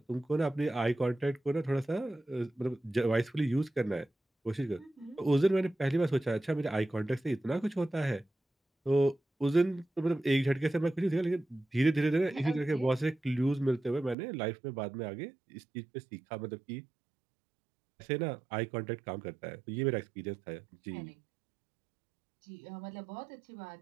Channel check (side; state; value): left; drops out; at 14.2 s